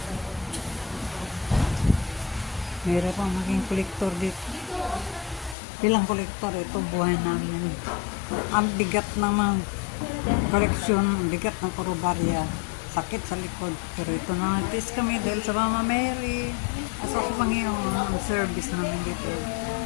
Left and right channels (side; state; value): right; drops out; at 5.6 s